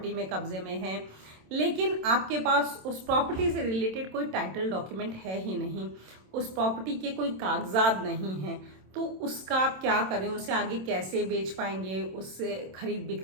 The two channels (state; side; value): late; left; 27 ms